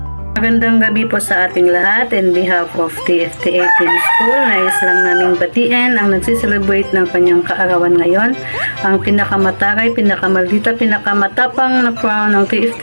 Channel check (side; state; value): both; inverted; correlation -1.00